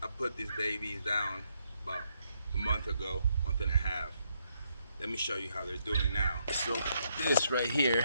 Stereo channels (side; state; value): both; inverted; correlation -0.77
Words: I put these babies down about a month ago, month and a half. Let me show you how they're doing now. So this right